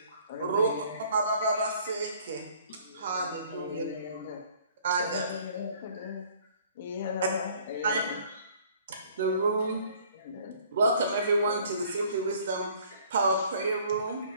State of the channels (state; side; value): inverted; both; correlation -0.56